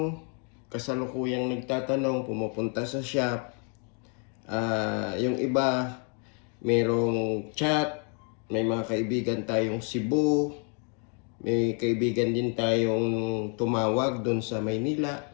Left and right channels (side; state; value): right; quieter; 39.2 dB